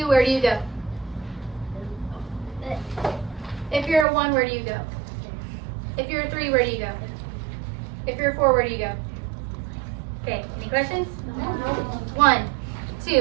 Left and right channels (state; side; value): drops out; left; at 4.0 s